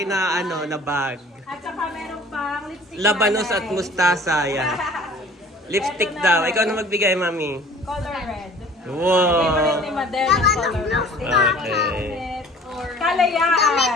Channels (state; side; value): normal; both; correlation 0.48